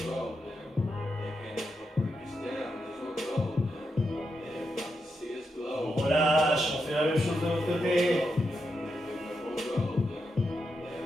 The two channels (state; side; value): normal; both; correlation 0.85